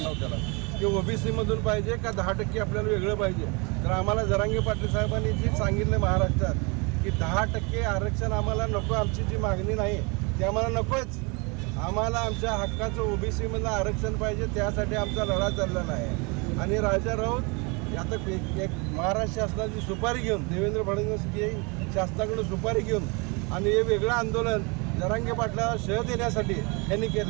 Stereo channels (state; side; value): quieter; left; 30.0 dB